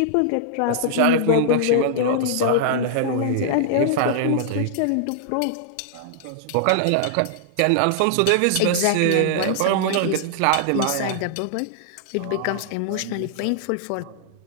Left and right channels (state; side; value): different; both; correlation -0.01